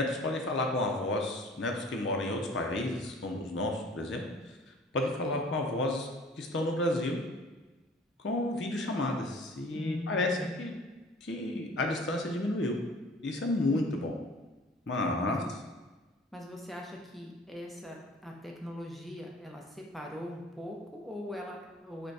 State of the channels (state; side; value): normal; both; correlation 0.49